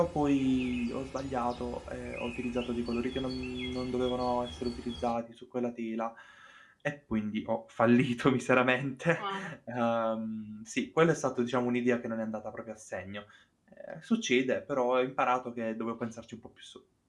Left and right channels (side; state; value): both; identical; correlation 1.00